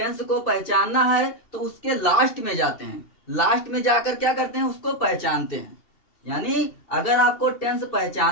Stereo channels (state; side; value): late; right; 2.6 ms